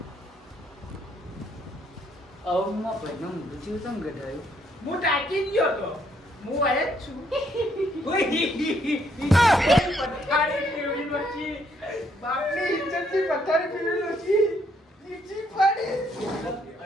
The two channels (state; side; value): normal; both; correlation 0.70